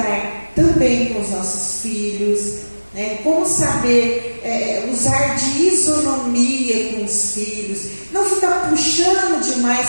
também com os nossos filhos, né? Como saber usar de isonomia com os filhos, não ficar puxando demais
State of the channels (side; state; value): both; inverted; correlation -1.00